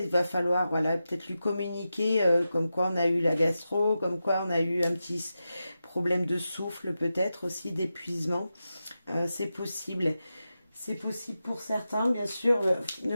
va falloir, voilà, peut-être lui communiquer comme quoi on a eu la gastro, comme quoi on a eu un petit problème de souffle, peut-être aussi d'épuisement. C'est possible. C'est possible pour certains, bien sûr. Ne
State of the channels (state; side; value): inverted; both; correlation -0.91